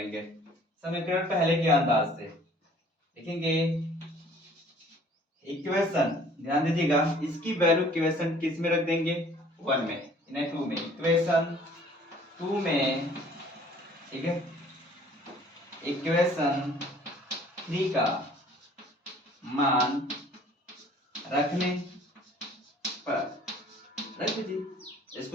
समीकरण पहले के अंदाज से लिखेंगे। इक्वेशन ध्यान दीजिएगा, इसकी वैल्यू इक्वेशन किस में रख देंगे 1 में, इन्हें 2 में, इक्वेशन 2 में, ठीक है। इक्वेशन 3 का मान रखने पर रख दीजिए।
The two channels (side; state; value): both; normal; correlation 0.54